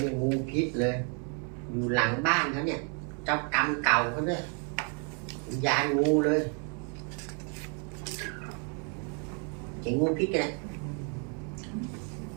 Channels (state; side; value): quieter; left; 39.9 dB